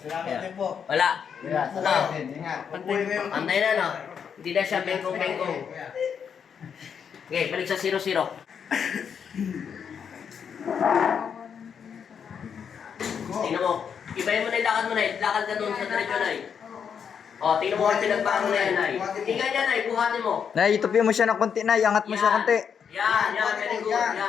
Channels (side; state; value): right; quieter; 7.3 dB